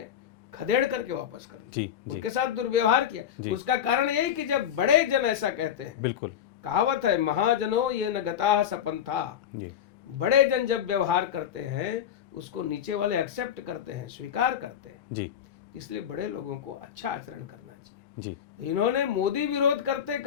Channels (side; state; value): right; quieter; 9.4 dB